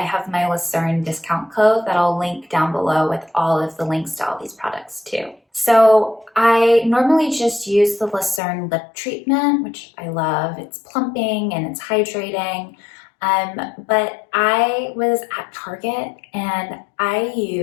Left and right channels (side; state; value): right; drops out; at 8.4 s